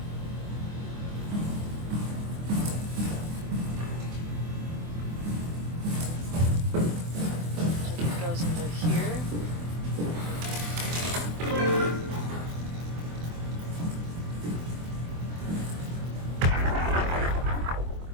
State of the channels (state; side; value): late; left; 24 ms